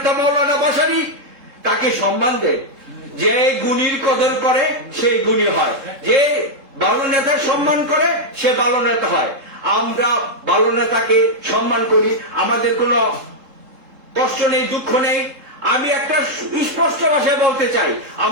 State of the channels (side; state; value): left; late; 3.7 ms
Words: মৌলানা ভাসানী, তাকে সম্মান দেন। যে গুণীর কদর করে সেই গুণী হয়, যে ভালো নেতার সম্মান করে সে ভালো নেতা হয়। আমরা ভালো নেতাকে সম্মান করি, আমাদের কোনো কষ্ট নেই, দুঃখ নেই। আমি একটা স্পষ্ট ভাষায় বলতে চাই,